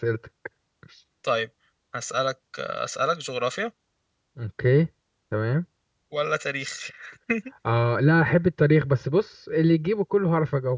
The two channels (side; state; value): both; identical; correlation 1.00